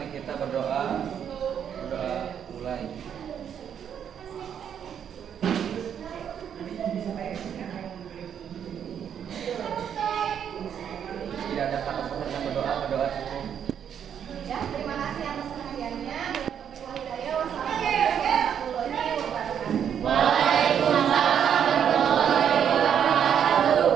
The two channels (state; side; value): quieter; left; 8.5 dB